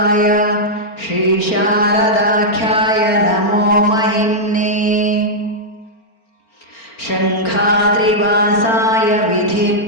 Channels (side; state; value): right; late; 4.4 ms